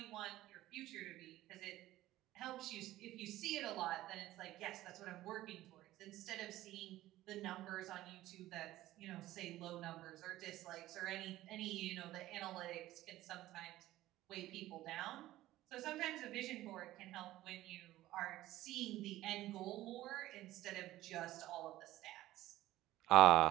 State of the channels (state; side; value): quieter; left; 15.5 dB